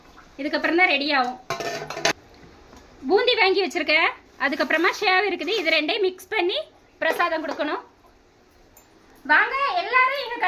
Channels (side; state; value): both; identical; correlation 1.00